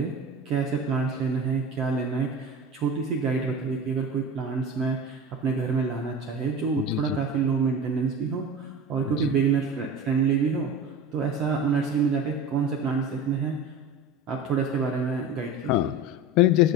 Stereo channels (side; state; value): both; normal; correlation 0.32